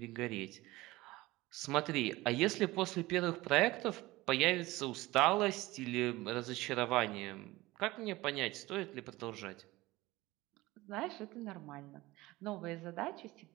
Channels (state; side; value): quieter; left; 19.4 dB